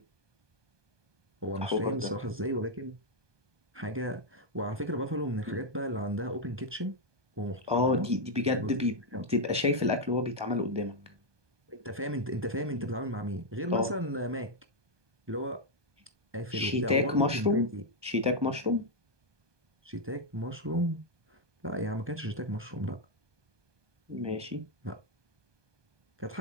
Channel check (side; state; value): left; late; 1.2 ms